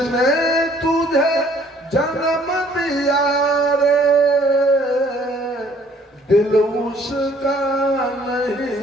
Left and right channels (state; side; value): normal; both; correlation 0.60